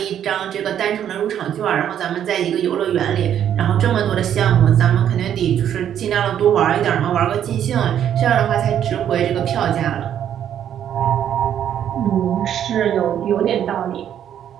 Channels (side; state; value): left; quieter; 9.9 dB